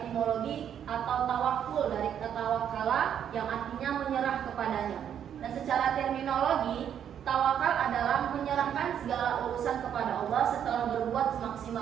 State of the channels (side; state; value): left; quieter; 9.1 dB